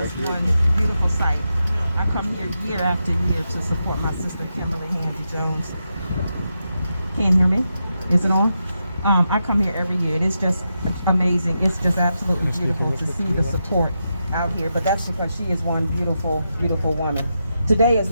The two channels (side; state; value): both; inverted; correlation -0.86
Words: is just one beautiful sight. I come here year after year to support my sister Kimberly Handy Jones. Can't hear me? Is it on? I come here every year. It is just amazing. It's just absolutely beautiful to see the support out here. But that's because she is one beautiful, beautiful woman. Today is